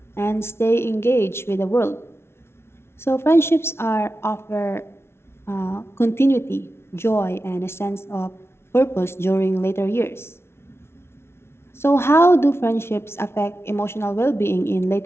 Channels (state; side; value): late; right; 0.12 ms